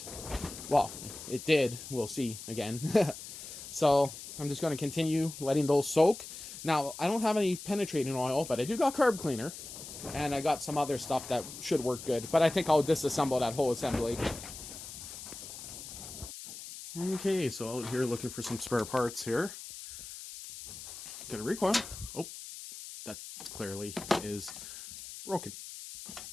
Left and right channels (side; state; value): left; noise; hiss, 11 dB below the sound